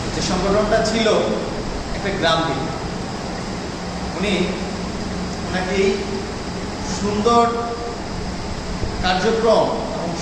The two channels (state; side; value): identical; both; correlation 1.00